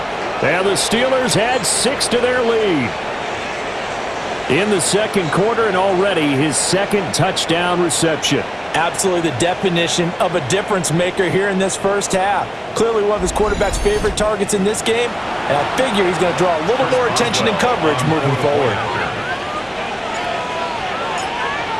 And the Steelers had 6 to their lead in the second quarter, and already his 2nd touchdown reception. Absolutely the definition of a difference maker here in this first half. Clearly one of his quarterback's favorite targets in this game, and I figure he's going to draw a little more attention and coverage moving forward.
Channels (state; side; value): identical; both; correlation 1.00